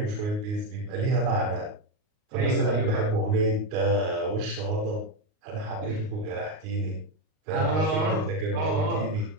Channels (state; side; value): late; left; 38 ms